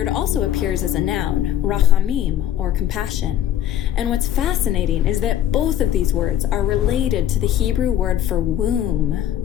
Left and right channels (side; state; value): right; quieter; 11.2 dB